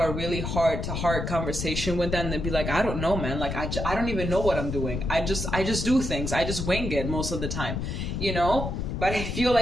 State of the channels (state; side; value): noise; left; rumble, 3 dB below the sound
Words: a really heart-to-heart conversation with them, they'd be like, I don't know, man. Like, I don't even know what I'm doing. I just do things. I just wing it most of the time, you know? But I feel